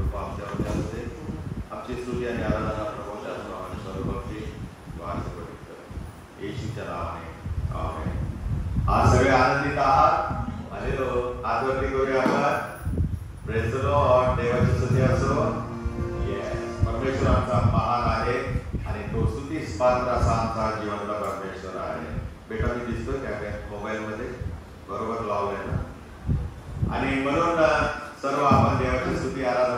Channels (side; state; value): both; identical; correlation 1.00